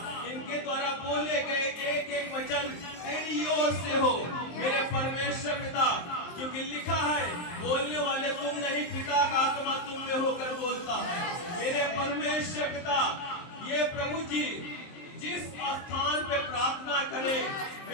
इनके द्वारा बोले गए एक एक वचन तेरी ओर से हो। मेरे परमेश्वर पिता, क्योंकि लिखा है बोलने वाले तुम नहीं, पिता का आत्मा तुम में होकर बोलता है। मेरे परमेश्वर पिता, ये प्रभु जी जिस स्थान पे प्रार्थना करे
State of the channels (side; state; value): right; late; 23 ms